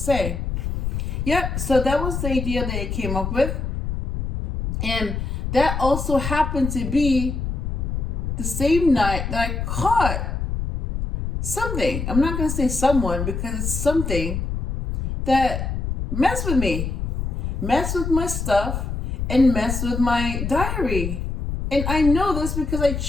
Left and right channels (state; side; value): noise; left; rumble, 3 dB below the sound